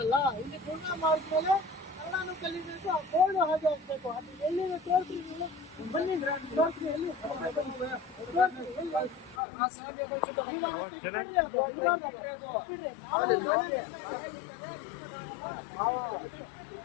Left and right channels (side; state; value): right; drops out; at 9.4 s